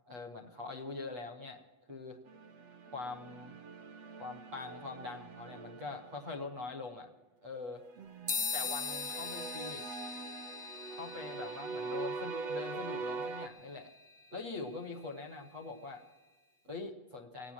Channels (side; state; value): left; late; 8.2 ms